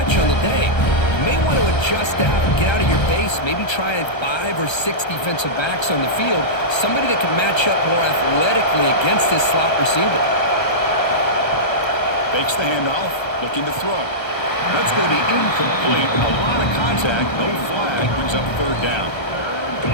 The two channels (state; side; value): late; right; 1.3 ms